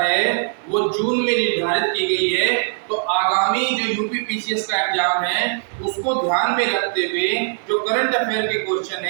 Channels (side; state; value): left; silent; 61 dB below the other